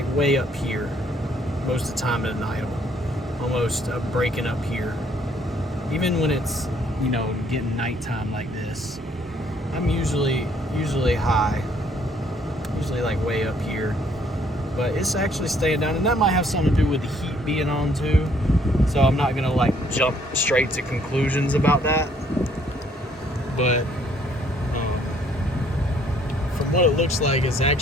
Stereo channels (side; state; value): both; normal; correlation 0.65